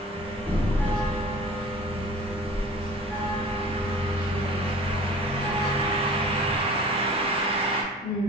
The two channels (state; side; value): normal; both; correlation 0.43